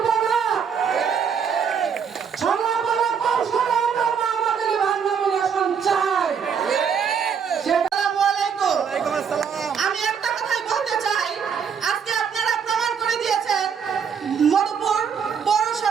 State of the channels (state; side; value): quieter; left; 6.9 dB